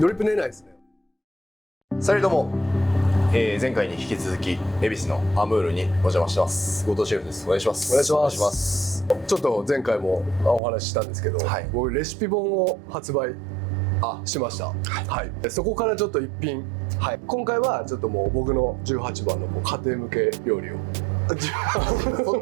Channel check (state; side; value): drops out; left; at 10.6 s